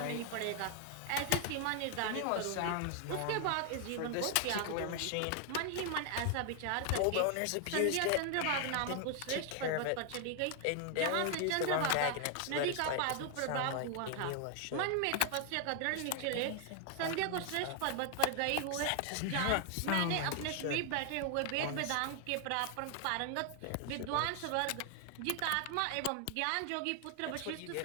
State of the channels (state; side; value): different; both; correlation 0.00